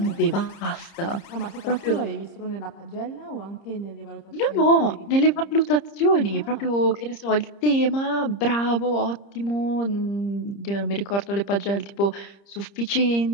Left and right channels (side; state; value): right; late; 30 ms